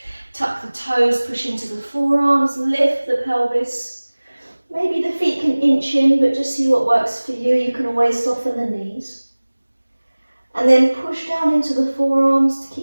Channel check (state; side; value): inverted; both; correlation -1.00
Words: Tuck the toes, push into the forearms, lift the pelvis. Maybe the feet can inch in, but just see what works for you. You can always soften the knees. And then push down into the forearms to